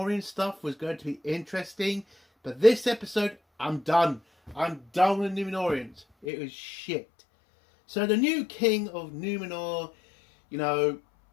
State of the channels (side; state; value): right; drops out; at 6.2 s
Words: stuff was going to be interesting. But this episode, I'm done. I'm done with Númenóreans. It was shit. So the new king of Númenor, you know,